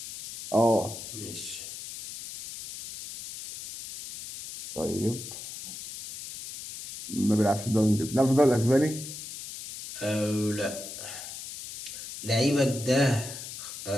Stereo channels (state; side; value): noise; left; hiss, 10 dB below the sound